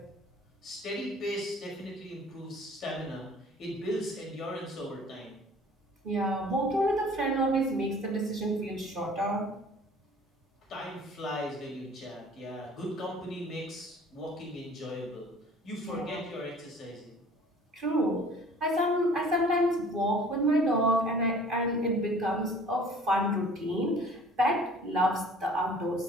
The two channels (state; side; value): normal; both; correlation 0.50